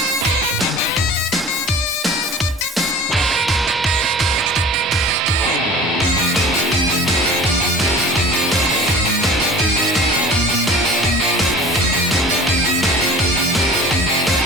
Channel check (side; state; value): both; normal; correlation 0.42